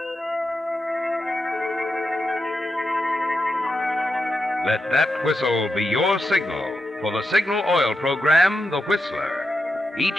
Let that whistle be your signal for the Signal Oil program, The Whistler,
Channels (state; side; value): normal; both; correlation 0.87